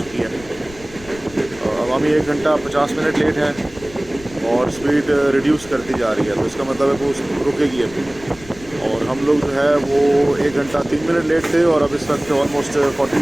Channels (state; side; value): noise; left; rumble, 20 dB below the sound